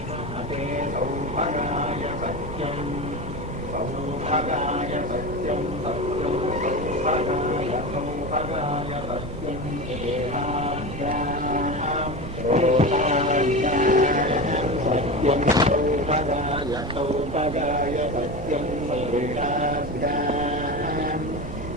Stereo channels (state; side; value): noise; right; rumble, 10 dB below the sound